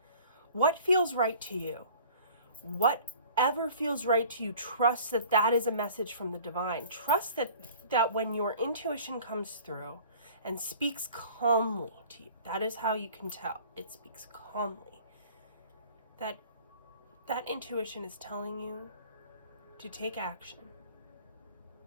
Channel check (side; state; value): both; inverted; correlation -0.47